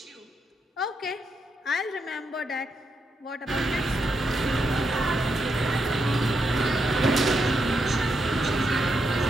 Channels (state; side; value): normal; both; correlation 0.82